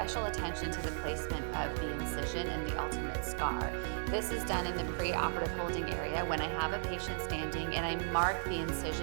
attention to the placement of the incision and the ultimate scar. This is done in the pre-operative holding area when I have a patient standing and I mark the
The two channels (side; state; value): left; silent; digital silence